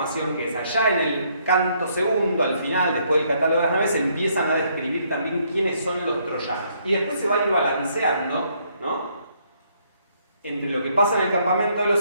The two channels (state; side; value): inverted; both; correlation -0.70